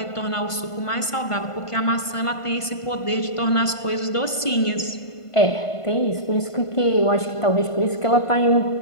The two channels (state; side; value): late; right; 1.5 ms